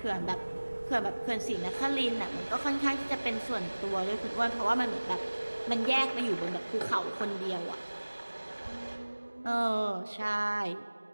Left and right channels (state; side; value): inverted; both; correlation -1.00